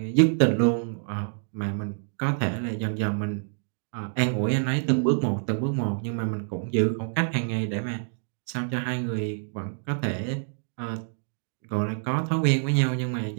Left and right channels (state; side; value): silent; left; digital silence